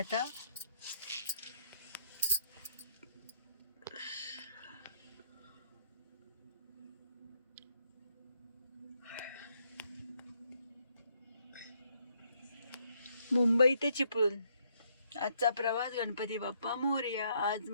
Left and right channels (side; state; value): both; inverted; correlation -0.72